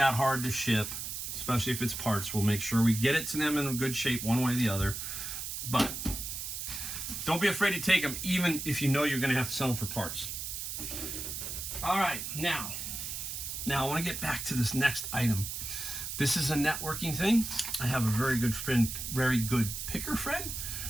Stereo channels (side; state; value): right; noise; hiss, 5 dB below the sound